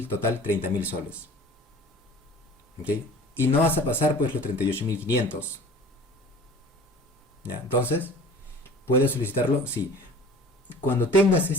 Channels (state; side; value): normal; both; correlation 0.45